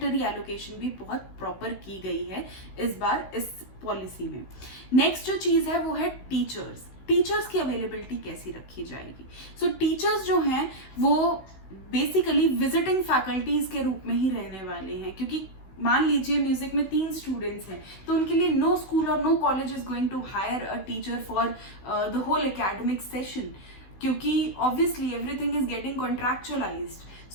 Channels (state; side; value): late; right; 16 ms